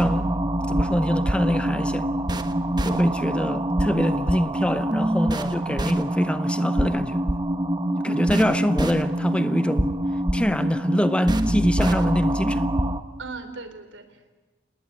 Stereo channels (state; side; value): normal; both; correlation 0.90